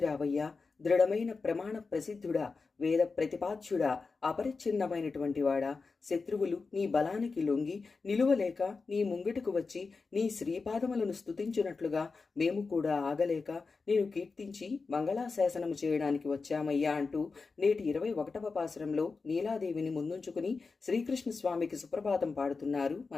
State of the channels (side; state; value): right; quieter; 4.4 dB